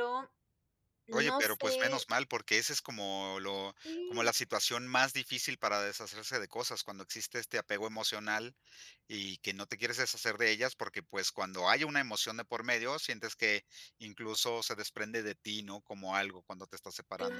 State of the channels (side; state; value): both; identical; correlation 1.00